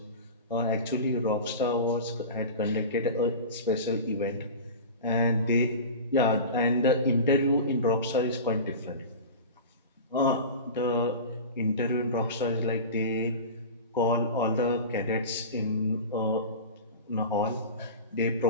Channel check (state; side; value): inverted; both; correlation -0.31